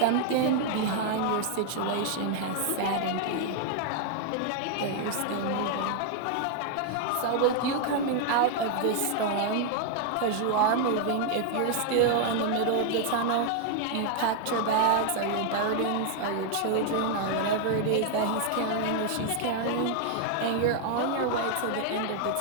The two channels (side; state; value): both; different; correlation 0.00